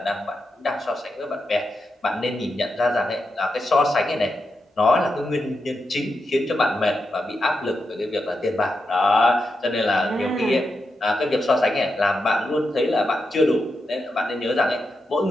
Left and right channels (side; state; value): both; normal; correlation 0.87